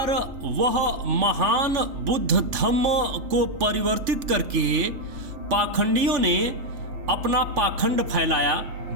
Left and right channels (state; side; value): late; left; 3.5 ms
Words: वह महान बुद्ध धम्म को परिवर्तित करके पाखंडियों ने अपना पाखंड फैलाया।